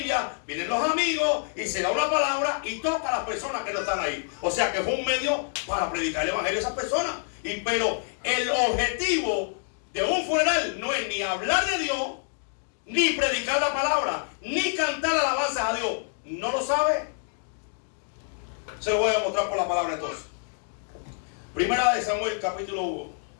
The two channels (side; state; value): right; silent; 60 dB below the other